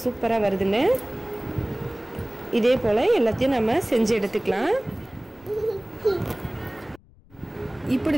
சூப்பராக வருதுன்னு. இதே போல் எல்லாத்தையும் நம்ம செஞ்சு எடுத்துக்கலாம்.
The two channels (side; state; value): left; noise; rumble, 26 dB below the sound